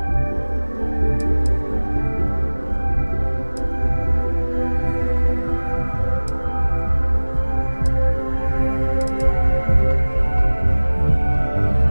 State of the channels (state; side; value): inverted; both; correlation -1.00